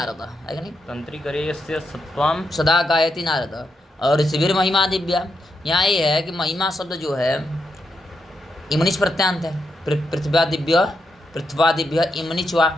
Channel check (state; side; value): normal; both; correlation 0.83